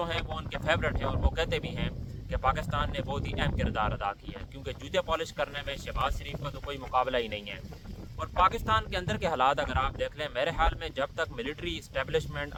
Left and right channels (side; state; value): both; identical; correlation 1.00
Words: ہیں وہ ان کے فیورٹ ہیں اور وہ کہتے بھی ہیں کہ پاکستان نے بہت ہی اہم کردار ادا کیا ہے، کیونکہ جوتے پالش کرنے میں شہباز شریف کا تو کوئی مقابلہ ہی نہیں ہے۔ اور پاکستان کے اندر کے حالات اگر آپ دیکھ لیں، میرے خیال میں جب تک ملٹری اسٹیبلشمنٹ